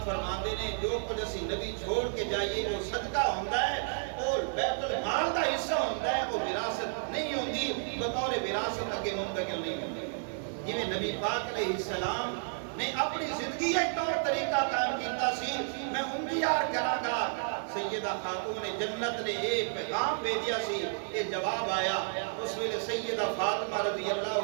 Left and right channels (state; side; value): silent; left; digital silence